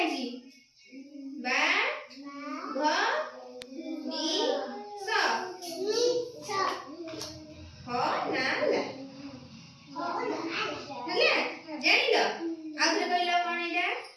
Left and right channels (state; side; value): identical; both; correlation 1.00